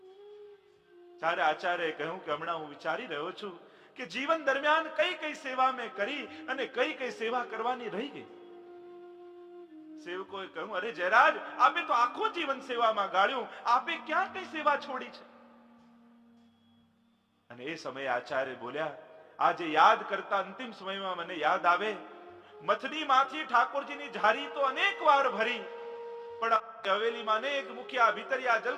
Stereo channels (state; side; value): identical; both; correlation 1.00